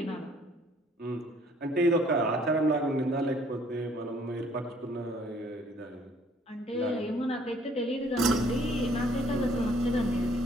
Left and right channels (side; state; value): both; normal; correlation 0.61